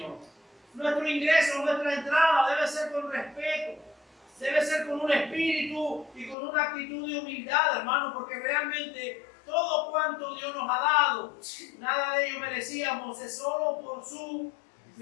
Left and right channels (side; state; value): right; drops out; at 6.4 s